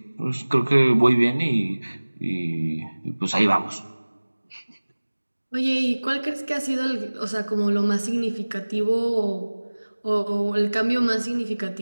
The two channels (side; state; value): both; inverted; correlation -1.00